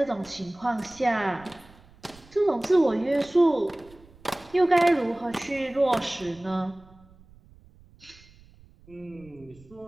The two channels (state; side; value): noise; right; rumble, 25 dB below the sound